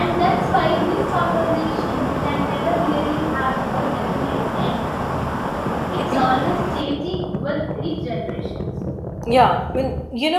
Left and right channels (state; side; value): identical; both; correlation 1.00